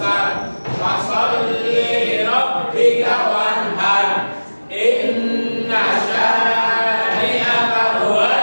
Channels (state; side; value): inverted; both; correlation -1.00